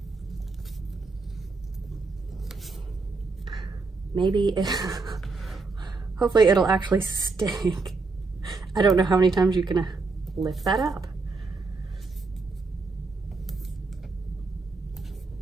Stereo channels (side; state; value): left; quieter; 4.0 dB